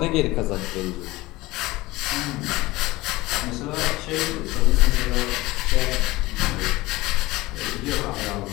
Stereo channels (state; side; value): quieter; right; 19.8 dB